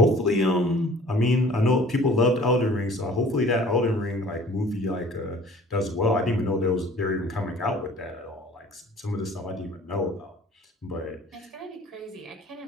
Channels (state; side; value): normal; both; correlation 0.49